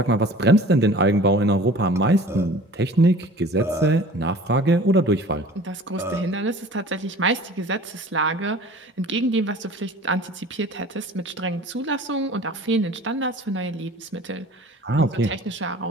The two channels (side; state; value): both; normal; correlation 0.44